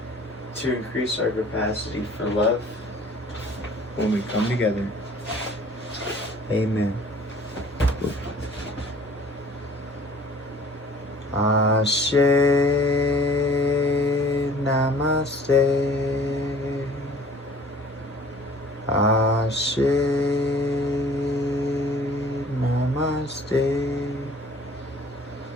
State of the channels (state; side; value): normal; both; correlation 0.51